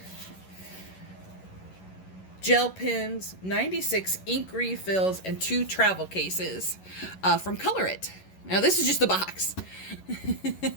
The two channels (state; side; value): late; right; 11 ms